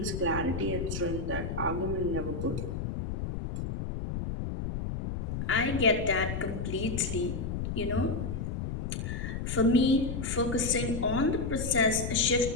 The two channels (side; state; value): left; noise; rumble, 4 dB below the sound